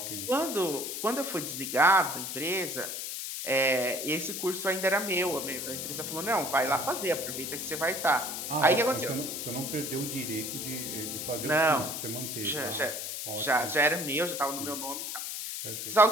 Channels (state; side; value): noise; left; hiss, 5 dB below the sound